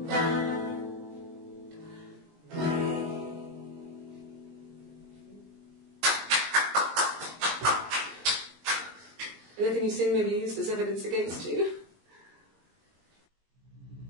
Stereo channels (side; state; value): left; late; 19 ms